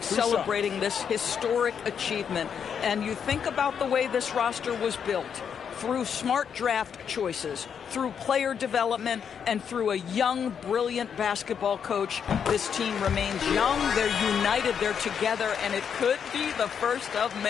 celebrating this historic achievement. And you think about the way this roster was built. Through smart draft choices, through player development, and through a young, brilliant basketball coach. This team remains young, they're united, they're together, and it could be the first of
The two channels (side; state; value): right; quieter; 7.5 dB